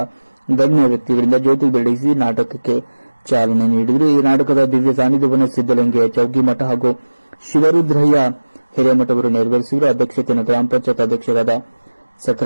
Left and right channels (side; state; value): both; inverted; correlation -1.00